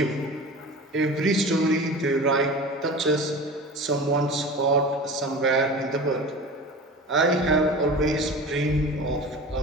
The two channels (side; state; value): both; normal; correlation 0.34